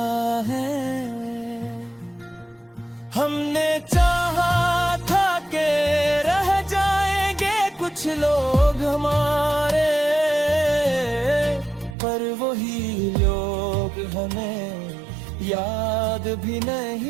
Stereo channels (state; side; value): drops out; left; at 12.0 s